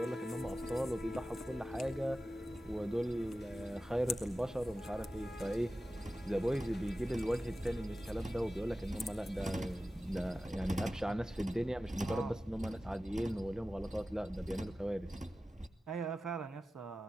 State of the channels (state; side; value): normal; both; correlation 0.94